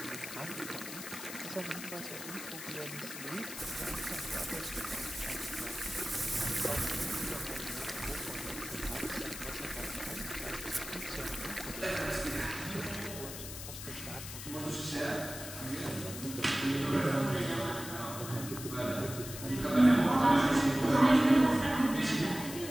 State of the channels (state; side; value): noise; left; hiss, 9 dB below the sound